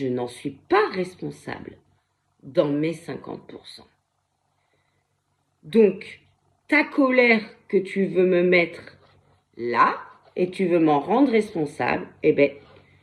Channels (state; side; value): identical; both; correlation 1.00